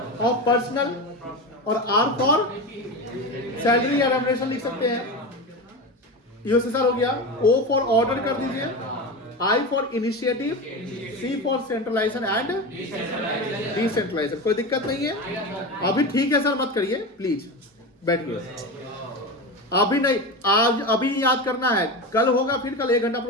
personal, और R फॉर सैलरी या रेम्युनरेशन लिख सकते हैं। USSR हो गया। O फॉर ऑर्डर कर दीजिए, I for initiative, C for centralization and decentralization. कोई दिक्कत नहीं है? अभी ठीक है सर, मत करिए प्लीज, बैठिए। अभी नहीं, आज अभी याद करना है। कल होगा, फिर कल 1 घंटा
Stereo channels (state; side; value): normal; both; correlation 0.23